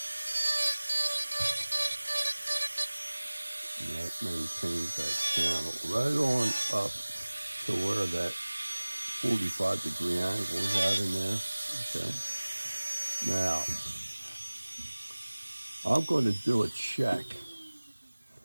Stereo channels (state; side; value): inverted; both; correlation -1.00